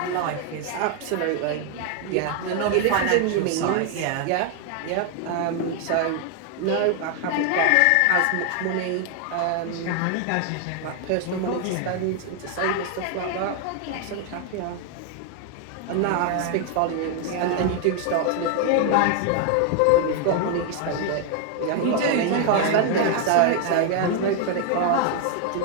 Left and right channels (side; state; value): both; different; correlation 0.00